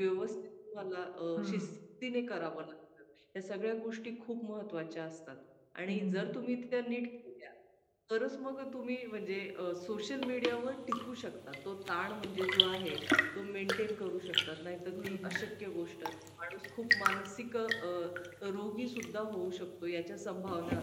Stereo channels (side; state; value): both; identical; correlation 1.00